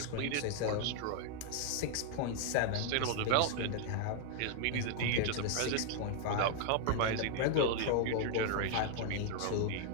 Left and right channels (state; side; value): different; both; correlation 0.00